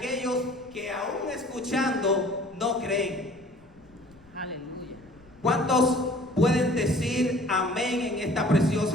que aún escuchando no creen. Aleluya. ¿Cuántos pueden decir amén en esta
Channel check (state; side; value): noise; left; rumble, 28 dB below the sound